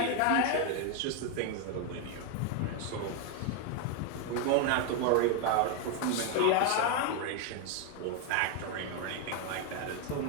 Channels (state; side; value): different; both; correlation 0.01